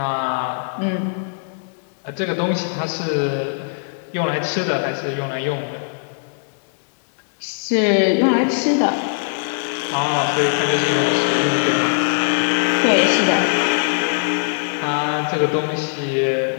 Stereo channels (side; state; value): right; silent; digital silence